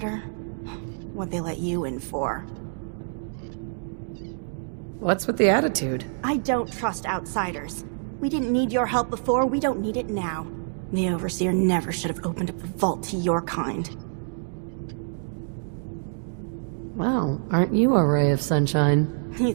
What'd they let you in for? What's with the attitude? I don't trust outsiders. We didn't need your help before, we don't need it now. The Overseer never should have opened up the vault to your kind. Well, aren't you a ray of sunshine? You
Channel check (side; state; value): left; silent; digital silence